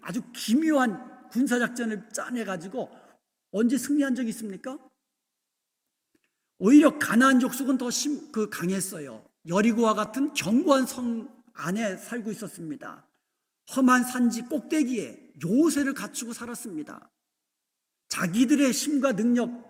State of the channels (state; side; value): identical; both; correlation 1.00